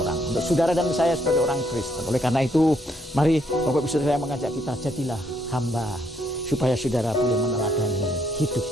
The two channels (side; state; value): both; normal; correlation 0.72